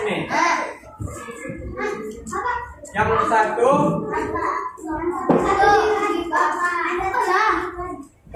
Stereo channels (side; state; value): both; identical; correlation 1.00